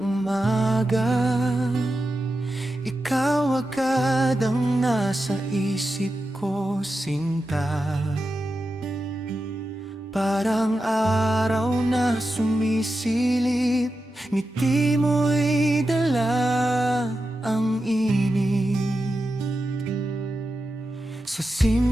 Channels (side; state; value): both; normal; correlation 0.90